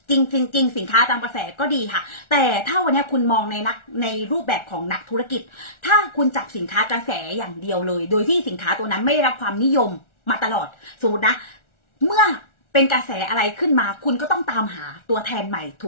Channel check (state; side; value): late; right; 1.4 ms